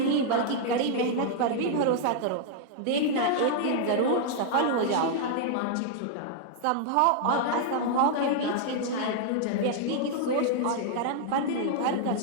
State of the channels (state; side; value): different; both; correlation -0.01